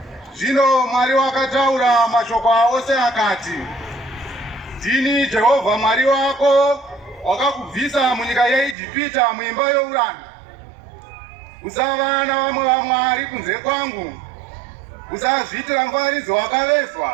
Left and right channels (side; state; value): left; drops out; at 8.8 s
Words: Zvino Mwari wakataura mashoko ose akati, ndini Jehovha Mwari wako, wakakubvisa munyika yeIjipita muimba youranda. Usava navamwe vamwari kunze kwangu. Usazviitira mufananidzo